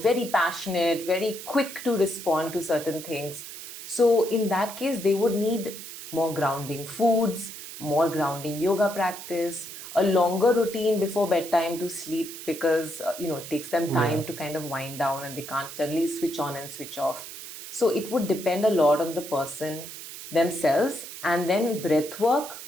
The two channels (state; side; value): noise; right; hiss, 11 dB below the sound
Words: passionate, very quick to respond to certain things. So in that case, they would need more grounding foods, more grounding yoga practice, a longer routine before bedtime to sleep because it takes them time Yeah. to kind of wind down and they can't suddenly switch on and switch off. So it would depend a lot on the person themselves. And then breath work